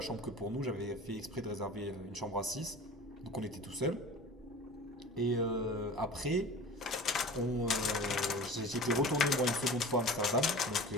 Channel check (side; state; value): both; normal; correlation 0.38